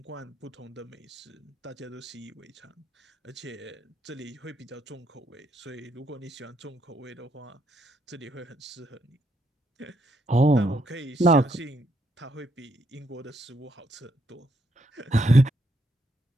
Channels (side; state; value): both; normal; correlation 0.76